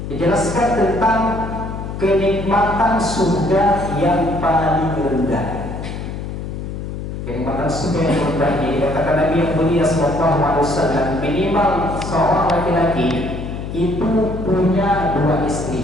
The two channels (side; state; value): left; noise; hum, 7 dB below the sound